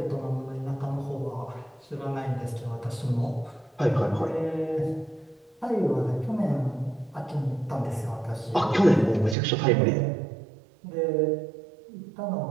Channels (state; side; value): drops out; left; at 9.3 s